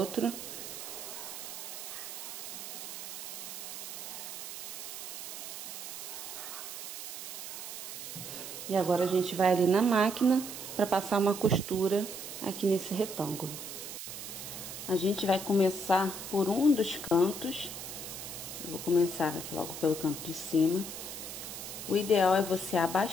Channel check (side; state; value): right; noise; hiss, 8 dB below the sound